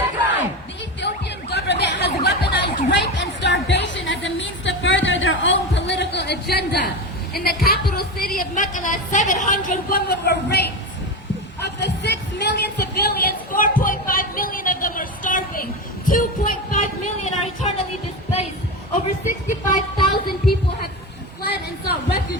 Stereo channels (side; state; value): both; normal; correlation 0.21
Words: The Ethiopian government has weaponized rape and starvation as a means to further their own political agenda. In the capital city of Mekelle, 700 women were raped. Of the 6 million civilians, 4.5 million of them are starving. 2.5 million are eternally displaced. Over 65,000 people have fled and sought